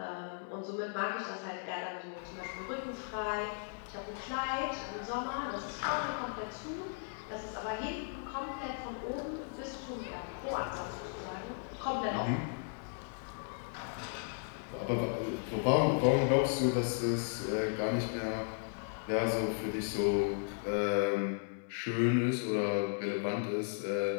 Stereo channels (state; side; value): silent; right; 54 dB below the other